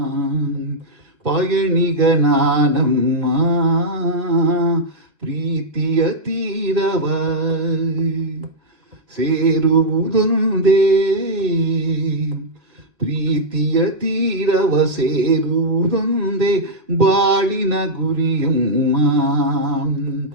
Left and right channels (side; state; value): left; late; 2.0 ms